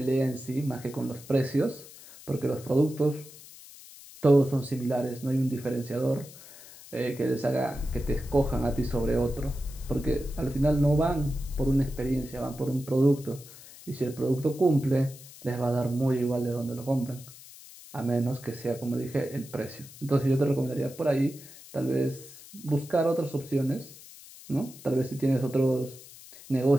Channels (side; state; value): left; noise; hiss, 18 dB below the sound